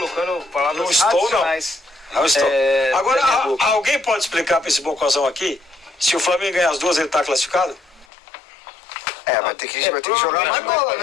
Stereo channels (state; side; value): drops out; right; at 8.1 s